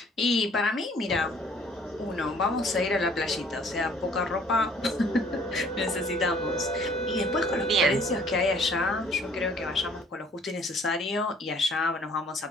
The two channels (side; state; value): both; normal; correlation 0.57